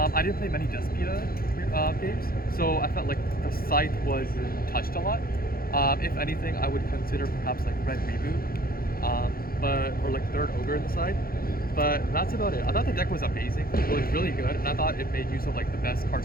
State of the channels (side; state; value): right; late; 0.43 ms